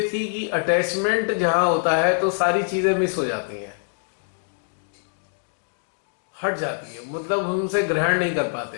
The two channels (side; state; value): right; silent; 62 dB below the other